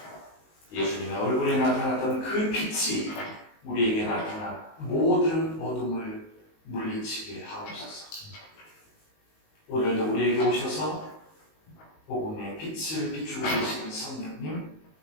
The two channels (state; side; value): late; right; 19 ms